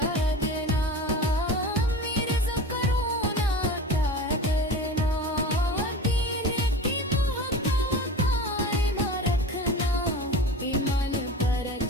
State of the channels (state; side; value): normal; both; correlation 0.33